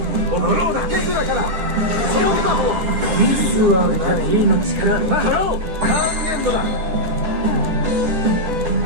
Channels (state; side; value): late; left; 10 ms